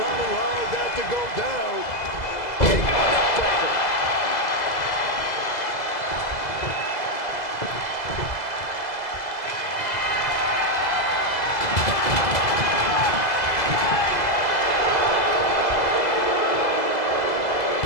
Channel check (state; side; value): late; right; 2.0 ms